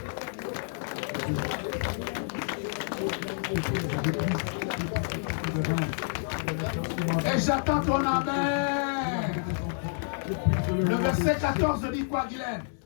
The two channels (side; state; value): right; silent; digital silence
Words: Et j'attends ton amen. Le verset 14 dit quoi, Guylaine?